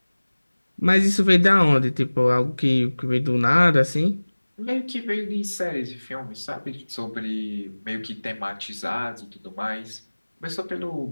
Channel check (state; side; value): inverted; both; correlation -1.00